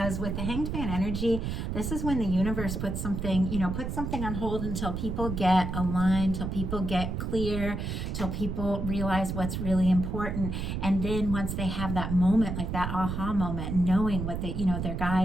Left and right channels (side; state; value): right; noise; rumble, 3 dB below the sound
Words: with the Hanged Man energy, this is when the universe puts something on hold until people get aligned, till people get clear, till people realize what's really important. And then once they have that moment, like that aha moment, knowing what their